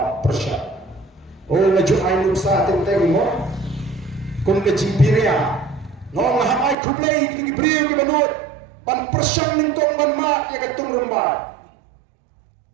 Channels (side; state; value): left; drops out; at 6.8 s